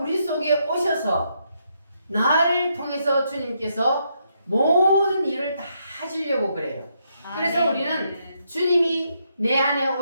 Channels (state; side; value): inverted; both; correlation -0.77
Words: 속에 오셔서 나를 통해서 주님께서 모든 일을 다 하시려고 그래요. 그래서 우리는 주님이 내 안에